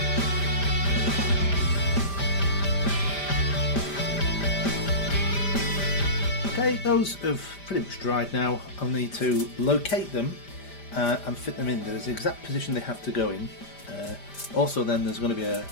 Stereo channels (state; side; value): late; right; 5.0 ms